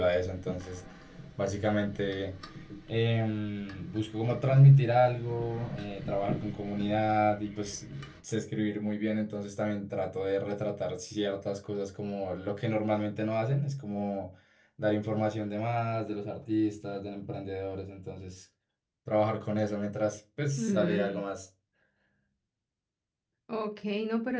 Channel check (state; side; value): identical; both; correlation 1.00